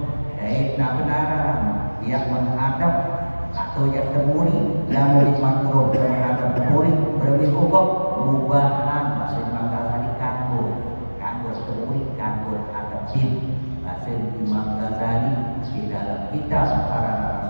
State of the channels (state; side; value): inverted; both; correlation -1.00